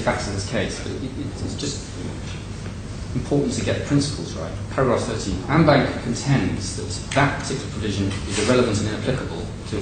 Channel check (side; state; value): both; identical; correlation 1.00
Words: in this case, but it's just important to get the principles right. Paragraph 13. AmBank contends that that particular provision is irrelevant and inapplicable to